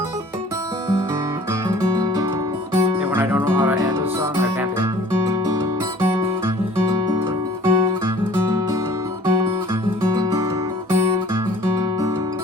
I don't know how to end a song, I can't.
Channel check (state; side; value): normal; both; correlation 0.50